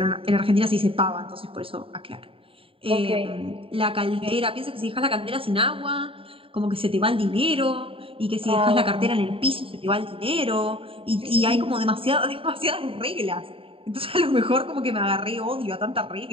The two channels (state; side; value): late; left; 0.27 ms